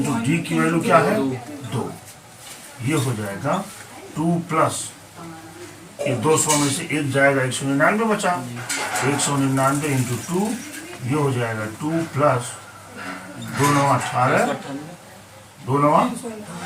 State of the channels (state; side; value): identical; both; correlation 1.00